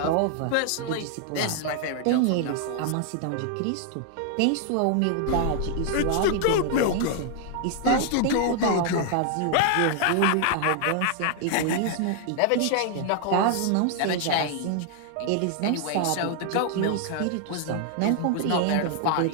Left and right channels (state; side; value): different; both; correlation 0.00